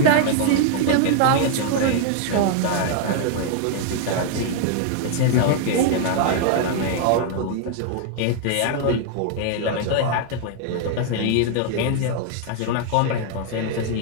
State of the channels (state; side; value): different; both; correlation 0.00